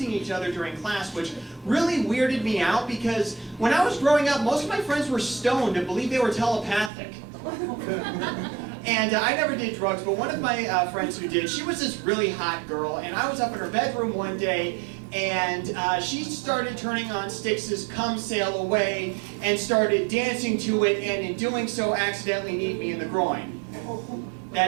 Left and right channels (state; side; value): drops out; left; at 6.9 s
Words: each other during class, which really weirded me out because when I was growing up, most of my friends were stoned and believed they were telepathic. And I never did drugs, but one of my friends who did, she was this really hot girl, and I was up in her bedroom one day, and she started turning on Styx's "Come Sail Away" and started dancing to it, and in doing so accidentally kneed me in the groin.